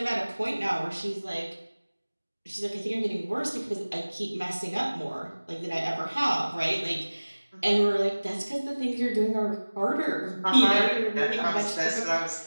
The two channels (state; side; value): inverted; both; correlation -1.00